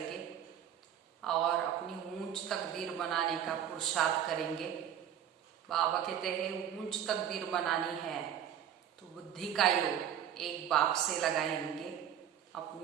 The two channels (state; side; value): quieter; left; 9.7 dB